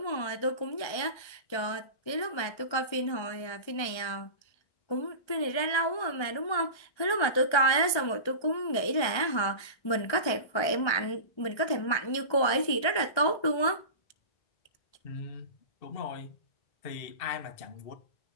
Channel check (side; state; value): right; late; 1.3 ms